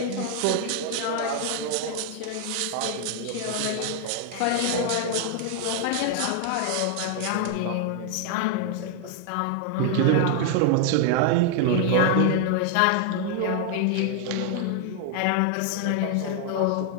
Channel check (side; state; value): both; different; correlation 0.00